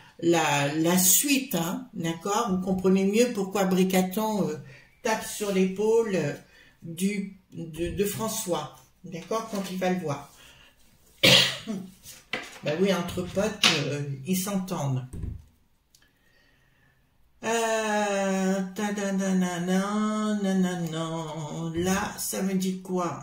suite, hein, d'accord? Vous comprenez mieux pourquoi Bricaton tape sur l'épaule de François, d'accord, quand il va le voir. Ben oui, entre potes, ils s'entendent. Là, ça me dit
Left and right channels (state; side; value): identical; both; correlation 1.00